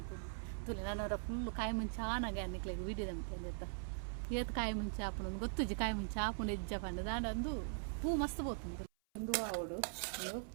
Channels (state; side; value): silent; left; 50 dB below the other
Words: ತುಲಿ ನಾನು ಫುಲ್ಲು ಕಾಯಿ ಮುಂಚೆ ಆನಾಗೆ ಅನ್ನಿಕ್ಲೆಗೆ ವಿಡಿದಂತಂದು ಎತ್ತ ಏತು ಕಾಯಿ ಮುಂಚೆ ಆಪುನ ಗೊತ್ತುಜಿ ಕಾಯಿ ಮುಂಚೆ ಆಪುನ ಎಜ್ಜ ಪಂಡ ದಾಂಡು ಪೂ ಮಸ್ತ್ ಪೋತುಂದು ಒಂದು ಆವಡು ಒಂದು